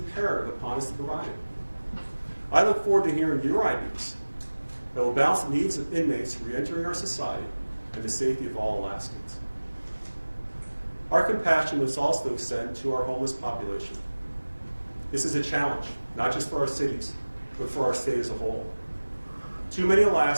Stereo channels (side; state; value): both; inverted; correlation -1.00